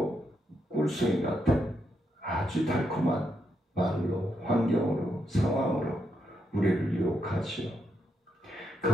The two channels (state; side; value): normal; both; correlation 0.81